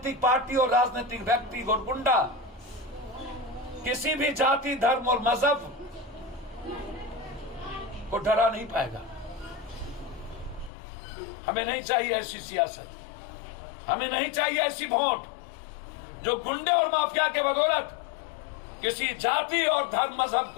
पार्टी और राजनीतिक व्यक्ति और गुंडा किसी भी जाति, धर्म और मजहब को डरा नहीं पाएगा। हमें नहीं चाहिए ऐसी सियासत, हमें नहीं चाहिए ऐसी वोट जो गुंडे और माफिया के बदौलत किसी जाति और धर्म मजहब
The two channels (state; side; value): drops out; right; at 10.7 s